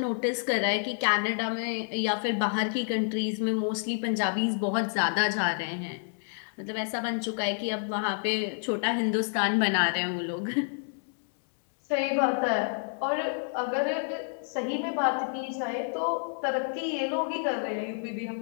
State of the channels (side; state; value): right; silent; digital silence